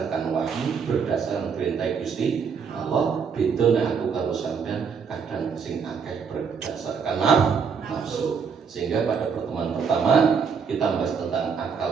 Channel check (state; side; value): quieter; left; 6.2 dB